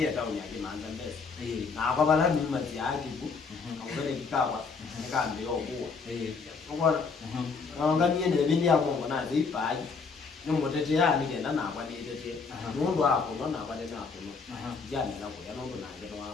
tauni yake manza mbele. Na kwa bala ni mazi yake ku. Ngore kikawa nikambe yokuwa. Ngora. Nganganie ne bindi ya Mungu na zipaji. Ni mutete ya ni kenda na kwa ni tete. Mundu hapo na kwa ni hapo. Jana na kwa ndo na ndio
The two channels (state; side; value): quieter; right; 4.9 dB